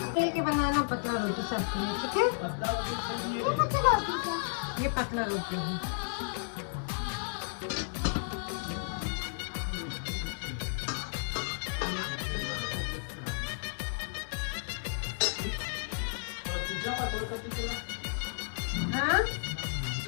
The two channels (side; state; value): right; silent; digital silence